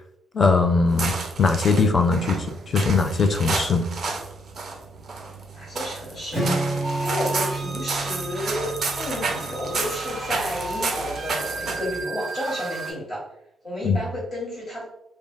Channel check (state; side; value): normal; both; correlation 0.73